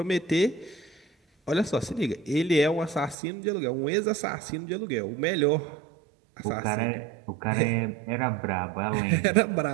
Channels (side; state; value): left; drops out; at 3.2 s